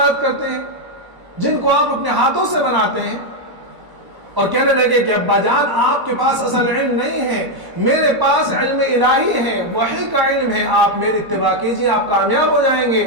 کرتے ہیں جن کو آپ اپنے ہاتھوں سے بناتے ہیں؟ اور کہنے لگے کہ ابا جان آپ کے پاس اصل علم نہیں ہے، میرے پاس علم الہی ہے، وحی کا علم ہے، آپ میری اتباع کیجئے، آپ کامیاب ہو جائیں گے،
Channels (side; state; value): left; late; 1.0 ms